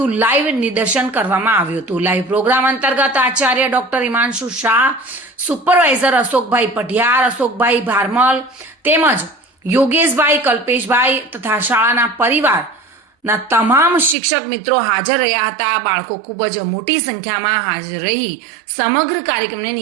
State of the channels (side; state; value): left; drops out; at 14.2 s